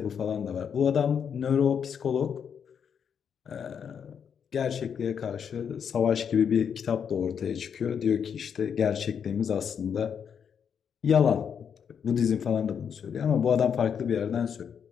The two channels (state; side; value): quieter; right; 7.5 dB